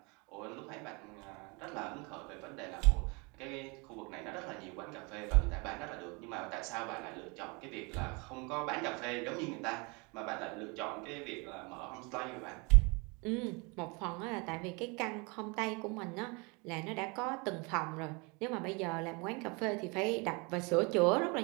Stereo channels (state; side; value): quieter; left; 29.6 dB